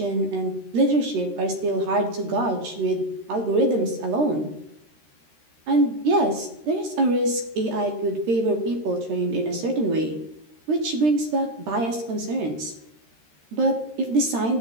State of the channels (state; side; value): late; left; 13 ms